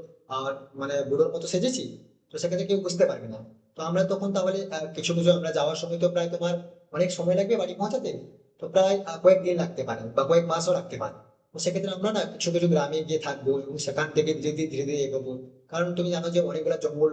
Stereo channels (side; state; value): both; identical; correlation 1.00